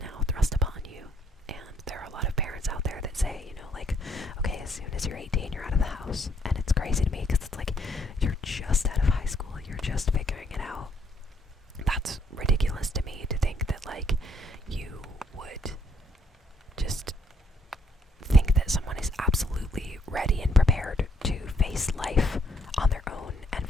thrust upon you. And there are a lot of parents out there that say, like, okay, as soon as you're 18, you're out of the house. And it's crazy to me because it's like, you're just out of high school, you're just figuring it out. That's ridiculous to me, to think that, like, you would just think that someone is absolutely ready and prepared to face life on their own and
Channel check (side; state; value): both; normal; correlation 0.69